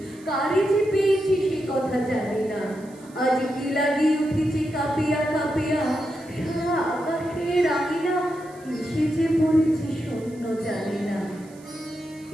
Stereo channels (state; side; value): noise; right; hiss, 26 dB below the sound